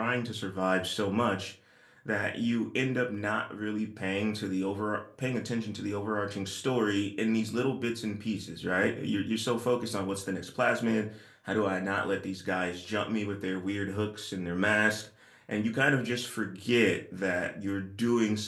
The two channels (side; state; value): both; identical; correlation 1.00